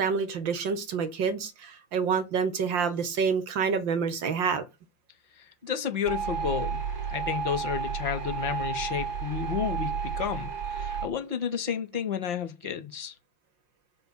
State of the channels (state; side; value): late; left; 5.7 ms